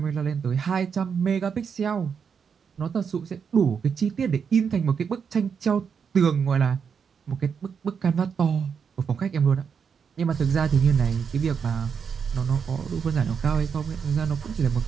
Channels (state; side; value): quieter; left; 6.6 dB